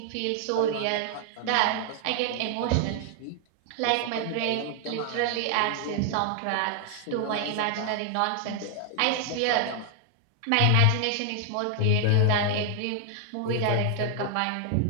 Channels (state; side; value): different; both; correlation 0.00